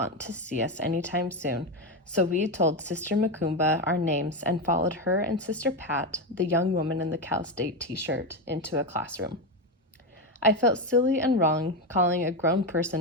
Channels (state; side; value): normal; both; correlation 0.12